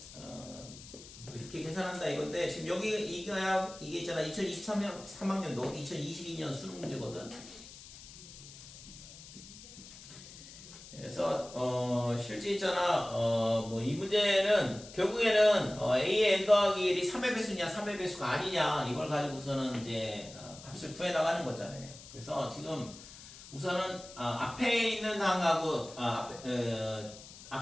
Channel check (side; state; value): left; noise; hiss, 17 dB below the sound